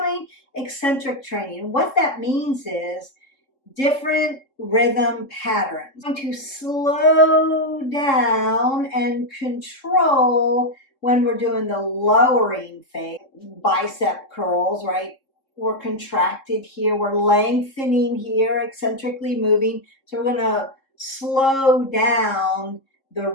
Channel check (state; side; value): late; right; 3.7 ms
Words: eccentric training. And what that means is different rhythm patterns. I'm going to slow down and control when we're doing the lowering phase. Bicep curls, right? We're contracted here, we're lengthening here, eccentrically moving. So we're going to slow down the